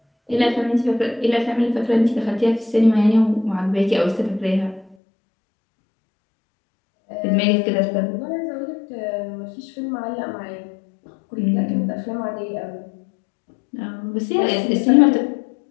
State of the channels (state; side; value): drops out; right; at 5.0 s